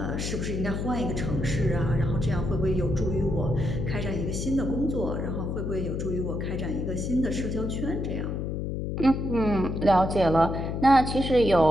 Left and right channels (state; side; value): noise; left; hum, 3 dB below the sound